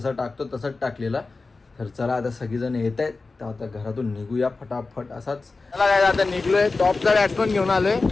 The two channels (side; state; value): right; quieter; 3.8 dB